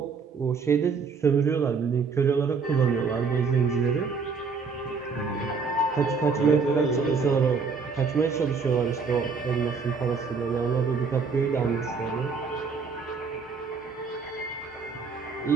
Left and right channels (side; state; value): left; quieter; 5.1 dB